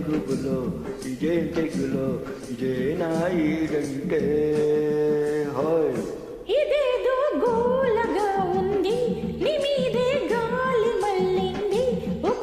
గుబులో, ఇదేం తెగులో, ఇదేనా ఈడంటే. హాయ్ ఇదేదో గోలగా ఉంది, నీ మీదే గాలి మళ్ళింది.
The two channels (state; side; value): identical; both; correlation 1.00